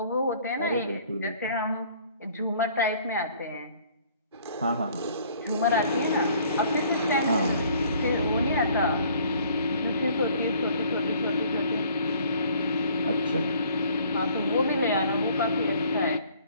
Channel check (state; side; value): inverted; both; correlation -0.57